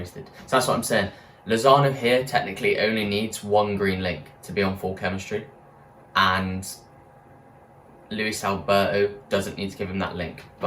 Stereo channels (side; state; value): both; identical; correlation 1.00